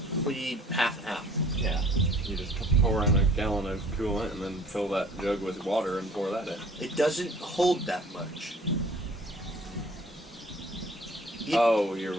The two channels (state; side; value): normal; both; correlation 0.52